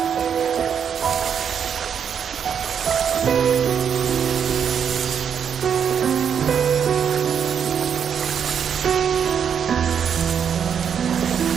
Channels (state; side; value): quieter; left; 7.7 dB